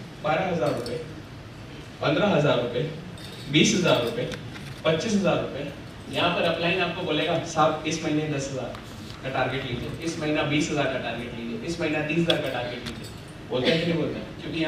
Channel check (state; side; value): identical; both; correlation 1.00